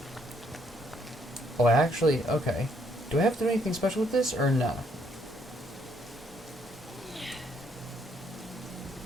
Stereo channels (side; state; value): both; normal; correlation 0.70